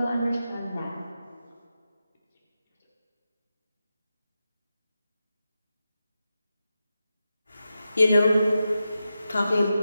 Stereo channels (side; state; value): both; inverted; correlation -0.90